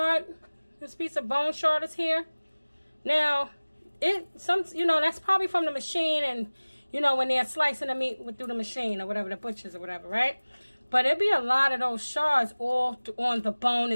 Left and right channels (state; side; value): inverted; both; correlation -1.00